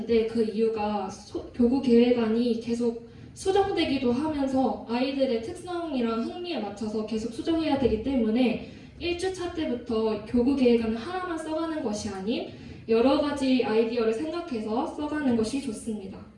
그 이유가 교구 계획안이 계속 수정되기도 하면서 아이들의 특성이랑 흥미에 맞춰서 계속 수정해야 되기 때문에 1주차 때부터 교구 계획안을 하나만 써가는 것이 아닌 여러 가지 아이디어를 생각해서 써가는 것이 좋습니다.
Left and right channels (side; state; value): both; identical; correlation 1.00